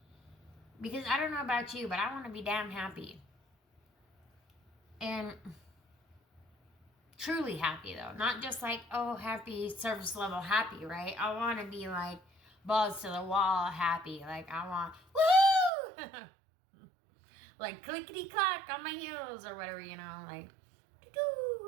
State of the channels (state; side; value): drops out; left; at 15.7 s